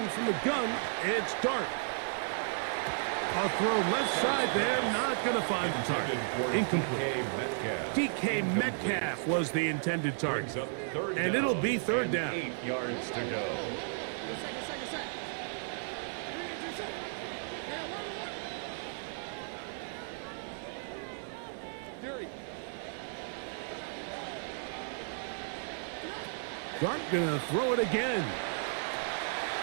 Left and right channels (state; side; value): silent; left; 55 dB below the other